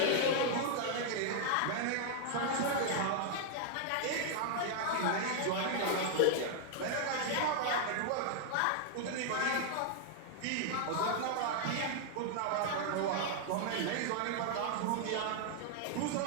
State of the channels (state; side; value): different; both; correlation -0.01